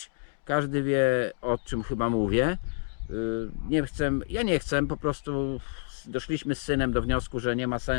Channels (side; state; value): right; silent; digital silence